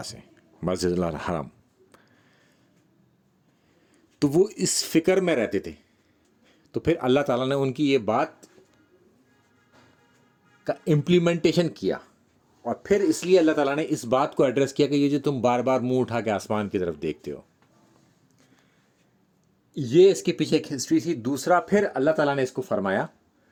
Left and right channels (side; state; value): both; identical; correlation 1.00